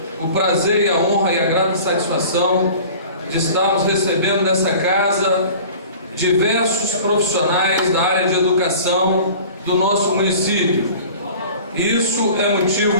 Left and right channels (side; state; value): both; inverted; correlation -0.43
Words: o prazer e a honra e a grata satisfação de estarmos recebendo nessa casa diversos profissionais da área de educação do nosso município. E isso é